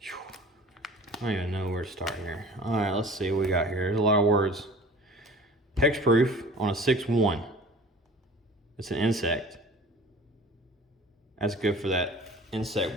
I don't even know where to start here. Alright, let's see what we got here. There's a lot of words. Hexproof on a 6/1. It's an insect. That's good for that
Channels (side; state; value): both; normal; correlation 0.44